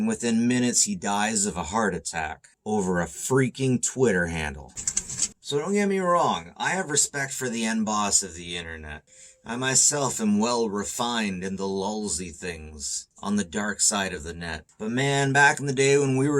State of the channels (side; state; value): both; identical; correlation 1.00